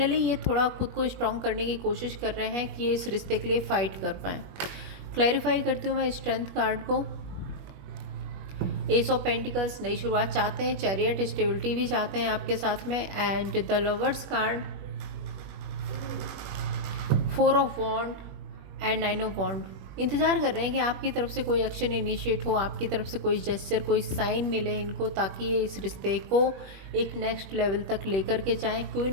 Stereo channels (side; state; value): left; late; 21 ms